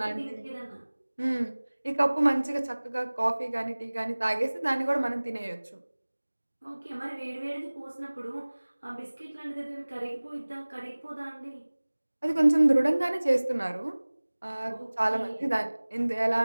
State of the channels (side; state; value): both; inverted; correlation -1.00